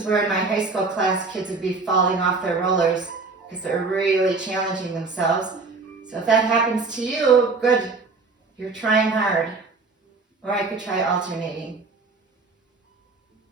where in my high school class, kids would be falling off their rollers because they're really challenging themselves. So if that happens to you, good. You're trying hard. Or I could try alternating.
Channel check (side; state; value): left; quieter; 4.1 dB